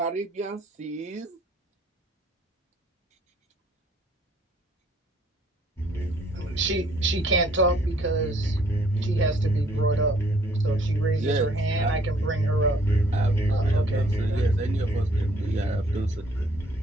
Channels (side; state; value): both; normal; correlation 0.61